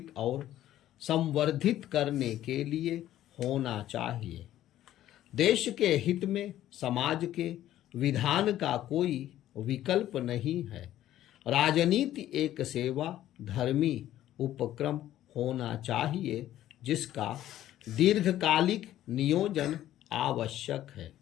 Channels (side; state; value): right; quieter; 13.0 dB